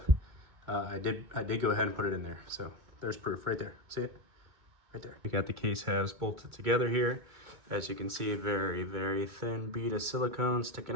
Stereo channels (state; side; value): late; left; 2.3 ms